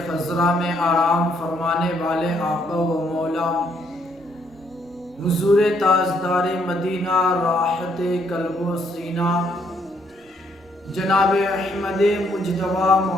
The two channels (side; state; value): both; normal; correlation 0.71